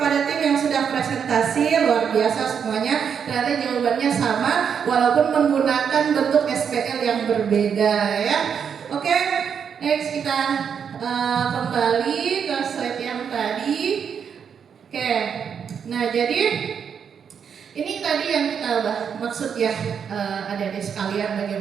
tim yang sudah presentasi, luar biasa semuanya. Ternyata jawabannya sama walaupun menggunakan bentuk SPL yang berbeda ya. Oke, next kita kembali ke slide yang tadi. Oke, nah jadi ini tadi yang kita maksud ya adik-adik sekalian,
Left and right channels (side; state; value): left; quieter; 7.3 dB